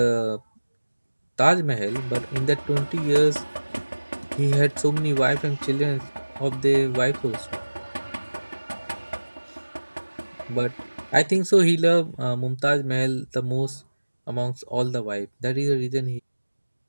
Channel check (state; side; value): inverted; both; correlation -1.00